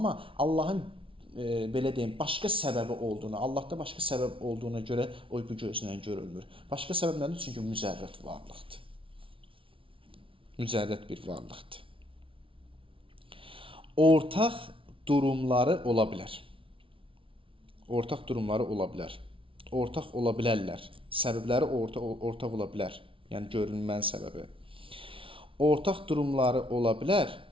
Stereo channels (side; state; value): left; late; 0.25 ms